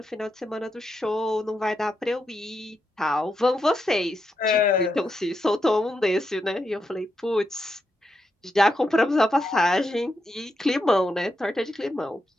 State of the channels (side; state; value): both; normal; correlation 0.84